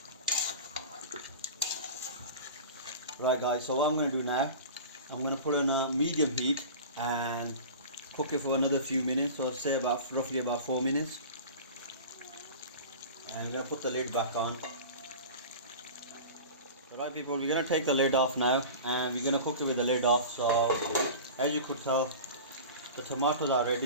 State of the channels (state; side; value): inverted; both; correlation -0.35